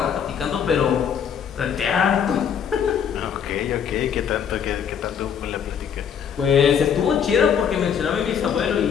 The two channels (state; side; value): quieter; right; 7.8 dB